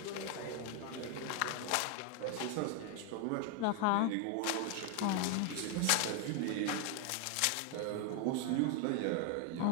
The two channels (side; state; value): both; different; correlation 0.00